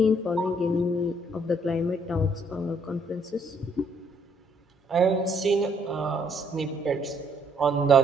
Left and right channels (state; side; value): normal; both; correlation 0.67